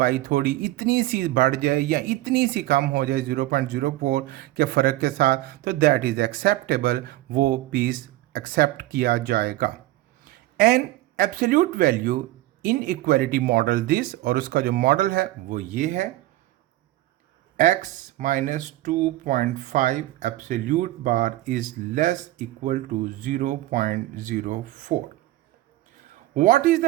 थोड़ी इतनी सी बढ़ जाए या इतनी सी कम हो जाए 0.04 के फ़र्क के साथ, तो दैट इज़ एक्सेप्टेबल, वो पीस एक्सेप्ट किया जाएगा. An absolute value in equality model this, और उसका जो मॉडल है वो ये है, x minus 2.5 absolute bar is less equal to 0.04. What is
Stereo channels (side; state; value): left; quieter; 16.8 dB